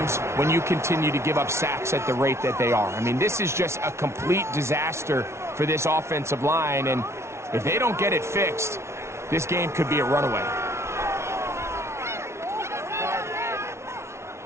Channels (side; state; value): left; late; 0.13 ms